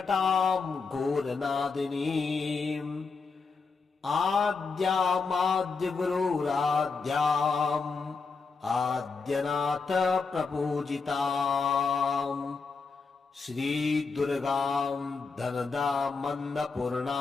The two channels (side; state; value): right; quieter; 4.7 dB